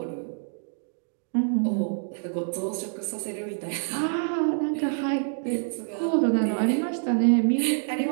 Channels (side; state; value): left; silent; digital silence